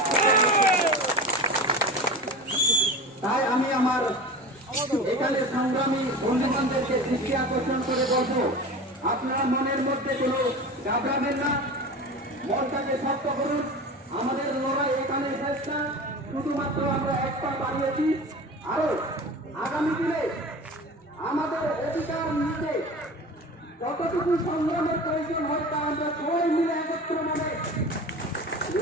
তাই আমি আমার এখানে সংগ্রামী বন্ধুবান্ধবদেরকে দৃষ্টি আকর্ষণ করে বলবো, আপনারা মনের মধ্যে কোনো ঘাবড়াবেন না, মনটাকে শক্ত করুন। আমাদের লড়াই এখানে শেষ না, শুধুমাত্র আমরা এক পা বাড়িয়েছি। আরো আগামী দিনে আমাদের অধিকার নিতে যতটুকু সংগ্রামের প্রয়োজন হয় তা আমরা সবাই মিলে একত্র মানে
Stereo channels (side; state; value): both; normal; correlation 0.32